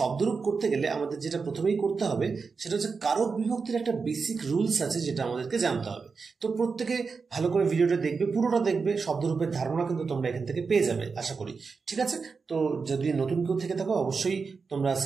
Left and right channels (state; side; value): quieter; left; 4.9 dB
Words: করতে গেলে আমাদের যেটা প্রথমেই করতে হবে সেটা হচ্ছে কারক বিভক্তির একটা বেসিক রুলস আছে, যেটা আমাদেরকে জানতে হবে। তো প্রত্যেকে ভালো করে ভিডিওটা দেখবে, পুরোটা দেখবে। শব্দরূপের ধারণা কিন্তু তোমরা এখান থেকে পেয়ে যাবে আশা করি। ঠিক আছে, তো যদি নতুন কেউ থেকে থাকো অবশ্যই তোমরা